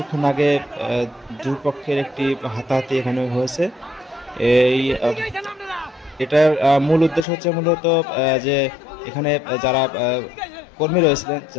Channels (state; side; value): drops out; right; at 7.2 s